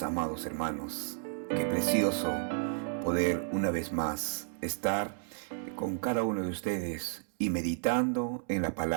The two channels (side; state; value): left; silent; digital silence